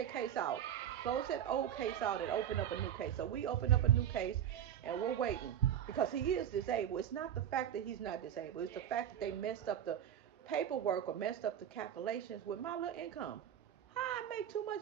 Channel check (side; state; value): left; quieter; 9.9 dB